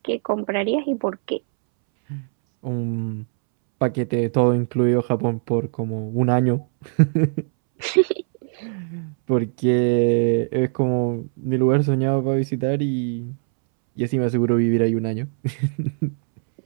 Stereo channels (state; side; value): silent; left; 64 dB below the other